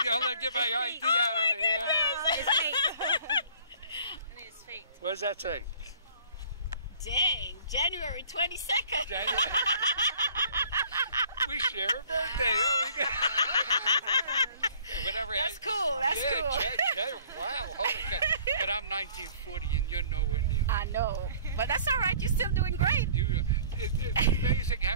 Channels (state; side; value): inverted; both; correlation -0.53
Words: ID out over here. It's fake. I mean, it's fake. What does that say? Dang, January 22nd. We share a birthday. Whatever. That's cool. Wow, holy cow. But I'm 1940 and you're nowhere near. I know. But that's all right. You're still doing great. It's amazing